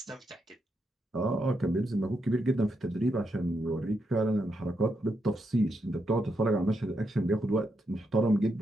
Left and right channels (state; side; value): normal; both; correlation 0.82